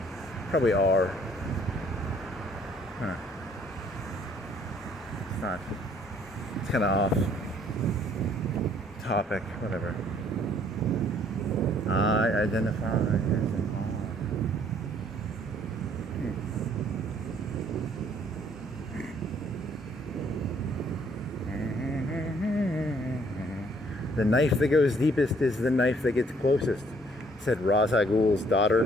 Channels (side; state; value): both; normal; correlation 0.62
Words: probably R. Huh. It's not. It's kind of off topic. Whatever. I identify as an R. The knife that goes deepest is the knife that gets closest, said Ra's al Ghul's daughter